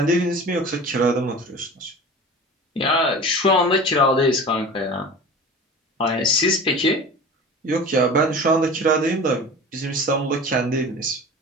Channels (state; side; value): normal; both; correlation 0.37